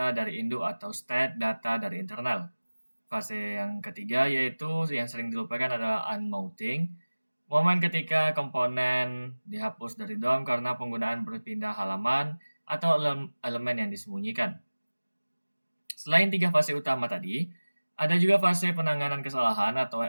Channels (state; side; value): inverted; both; correlation -1.00